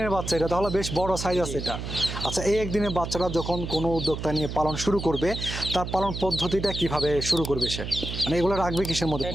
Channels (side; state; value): right; noise; hum, 6 dB below the sound